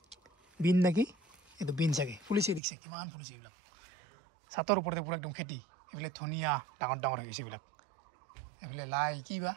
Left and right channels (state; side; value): drops out; left; at 2.6 s